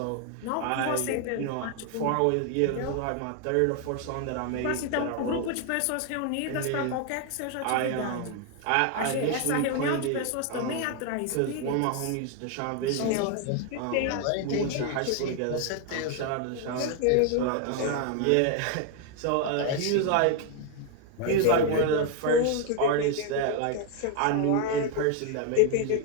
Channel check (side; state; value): both; different; correlation 0.01